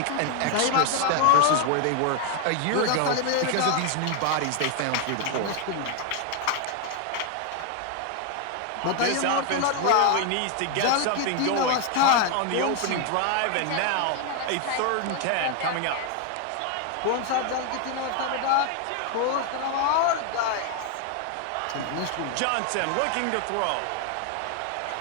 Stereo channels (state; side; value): different; both; correlation 0.01